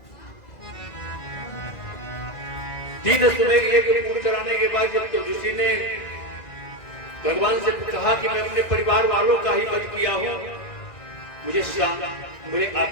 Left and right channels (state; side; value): late; right; 2.0 ms